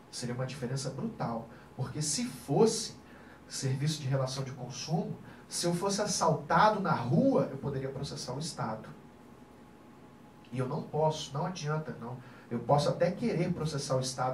seria uma diferença brutal, porque se fosse serviço de relação de consumo, se eu fosse assaltado na rua, eu poderia processar o Estado. E eu não posso, não adianta, não. Eu posso até querer processar o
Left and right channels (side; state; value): both; identical; correlation 1.00